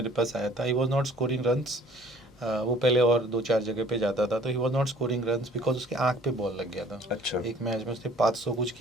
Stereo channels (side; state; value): both; normal; correlation 0.53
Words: पास आया था। He was not scoring runs, वो पहले और 2-4 जगह पे जाता था, तो he was not scoring runs because उसके आँख पे बॉल लग गया था। अच्छा एक मैच में उसने 500 कुछ